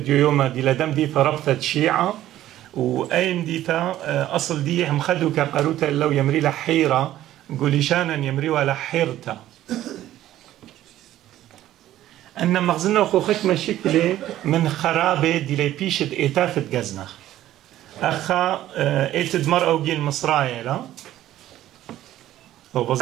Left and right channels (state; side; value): quieter; left; 13.4 dB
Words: يوم دي لدم ديثة ربطة شيعة وأين ديتا أصل دي هم خدوا كقروتا لو يمري لحيرة قولي شانا يمري ولا حيرتا أن مغزنا وخوخك مشكلة من خرابة دي لي بيشت إيتافت جزنخ أخا إيتد مرأة وجيل مصرايا لا